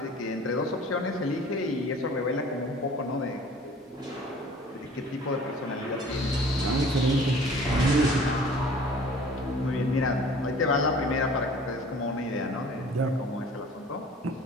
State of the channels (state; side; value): normal; both; correlation 0.49